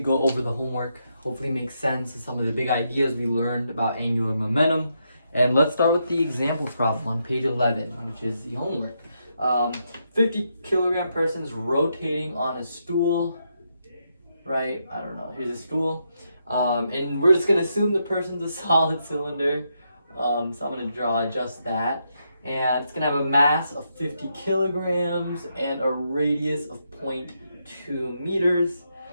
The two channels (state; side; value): inverted; both; correlation -0.81